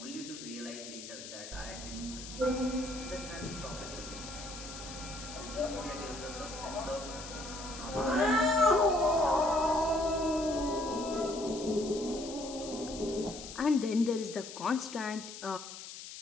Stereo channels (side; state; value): left; noise; hiss, 11 dB below the sound